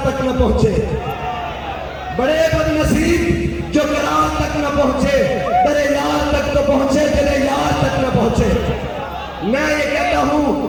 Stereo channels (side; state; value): both; identical; correlation 1.00